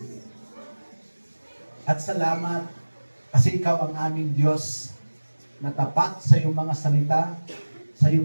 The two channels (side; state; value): both; inverted; correlation -1.00